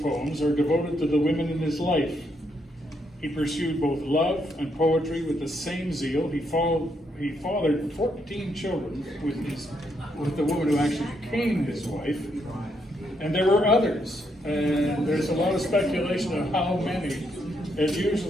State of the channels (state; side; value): normal; both; correlation 0.76